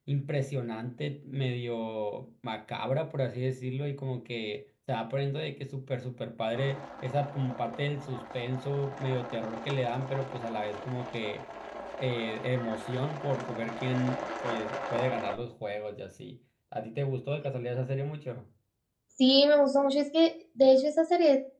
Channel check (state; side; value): identical; both; correlation 1.00